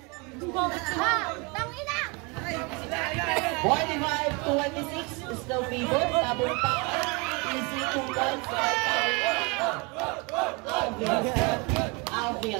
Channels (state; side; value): quieter; left; 29.4 dB